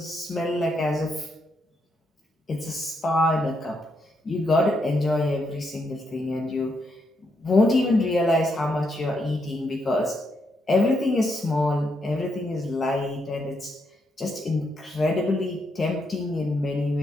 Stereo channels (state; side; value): normal; both; correlation 0.79